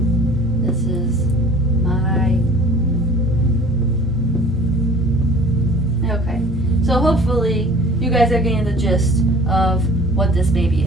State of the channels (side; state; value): both; normal; correlation 0.47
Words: This is my... Okay. So hopefully you guys are getting the gist of what this baby